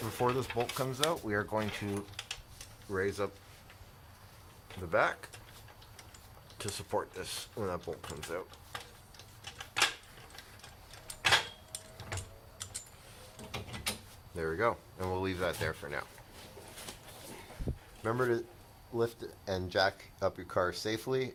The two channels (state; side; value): identical; both; correlation 1.00